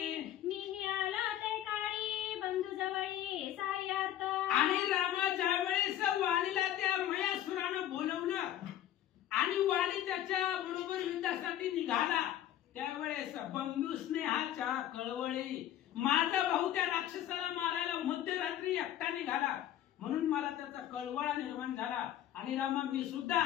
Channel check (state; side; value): quieter; right; 11.9 dB